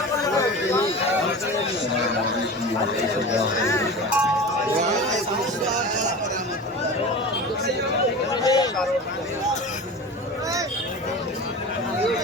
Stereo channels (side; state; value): both; normal; correlation 0.32